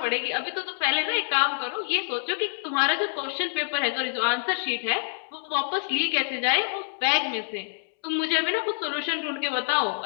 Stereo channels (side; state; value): right; silent; 60 dB below the other